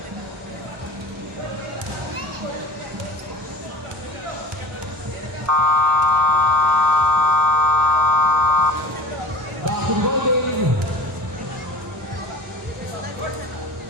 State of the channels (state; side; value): normal; both; correlation 0.39